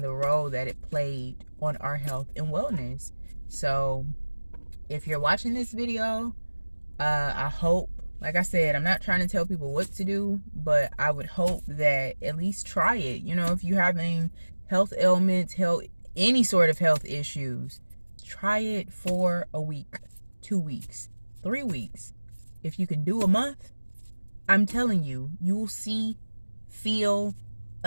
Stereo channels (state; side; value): inverted; both; correlation -1.00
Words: the role that it played on our health and wellness. So if you're watching this video, I hope, like I said, I'm not trying to tell people what to do, but I would hope that at least try it. You know, if you're having health ailments, any sort of health issues, try it for a week, 2 weeks, 3 weeks. If you can do a month, I'm telling you, you will feel